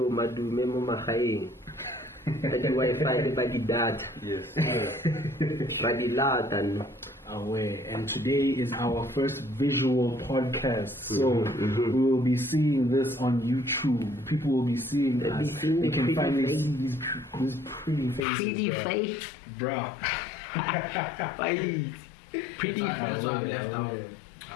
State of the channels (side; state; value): right; drops out; at 18.2 s